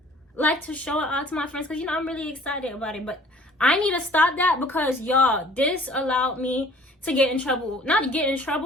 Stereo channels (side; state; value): both; normal; correlation 0.53